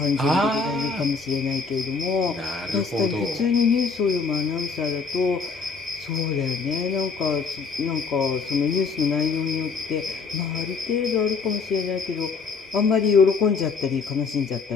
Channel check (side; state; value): right; quieter; 4.9 dB